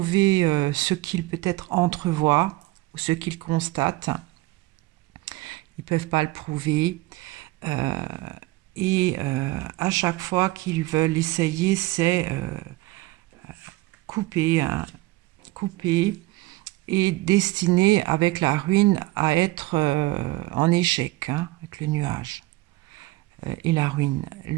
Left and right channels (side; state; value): left; quieter; 19.4 dB